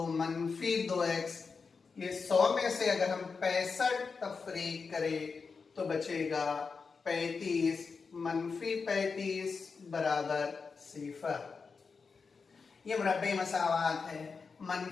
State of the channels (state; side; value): quieter; right; 5.0 dB